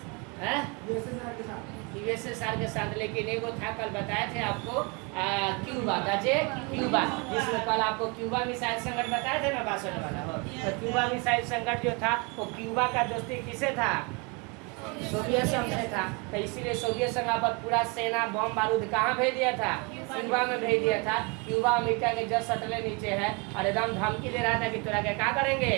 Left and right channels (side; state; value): left; quieter; 30.9 dB